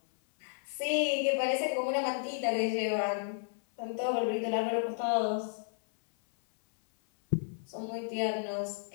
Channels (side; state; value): right; silent; 56 dB below the other